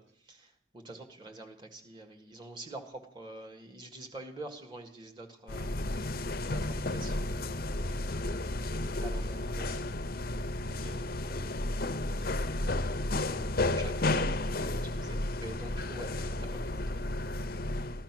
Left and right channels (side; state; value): both; normal; correlation 0.53